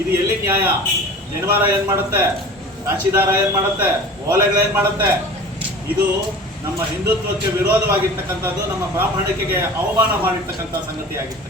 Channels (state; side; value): normal; both; correlation 0.39